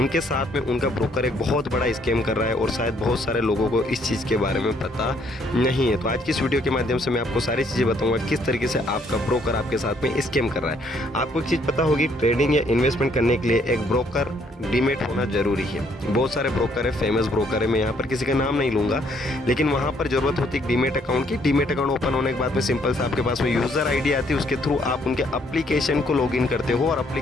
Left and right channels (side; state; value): both; normal; correlation 0.67